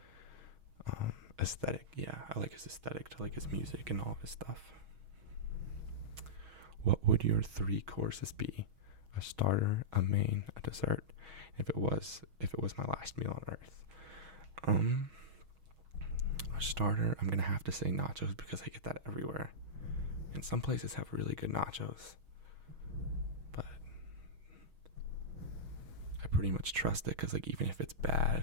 Aesthetic. Yeah, I like his aesthetic to like his music and all of his stuff. What would your 3 courses be? A starter, a main, a dessert. If it was my last meal on earth. A starter, I'm gonna have to say nachos because I get that everywhere. And some places have really good nachos. But I pretty much trust it because, like, even if it's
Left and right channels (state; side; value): late; left; 6.3 ms